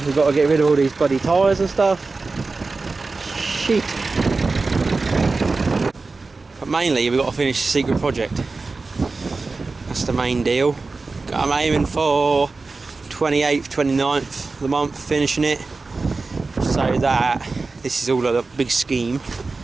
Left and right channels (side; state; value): left; quieter; 3.9 dB